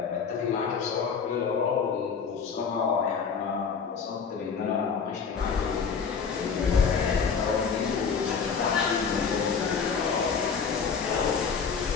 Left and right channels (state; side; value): quieter; right; 6.0 dB